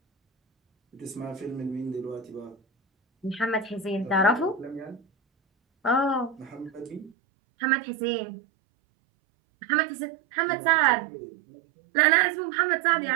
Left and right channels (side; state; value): left; drops out; at 7.1 s